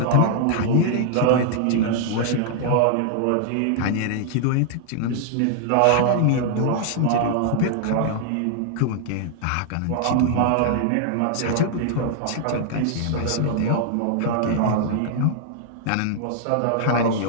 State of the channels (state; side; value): different; both; correlation 0.00